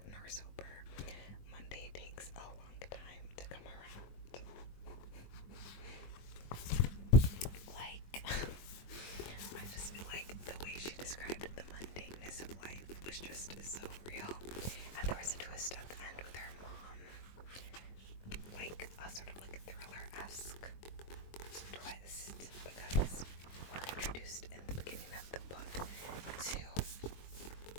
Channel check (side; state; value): right; late; 22 ms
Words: nor sober. Monday takes a long time to come around." Like, I just feel like the way she described the mundaneness of life was just so real. And there was a twist at the end with her mom, like a sort of like thriller-esque twist, because we're introduced in the beginning of the book to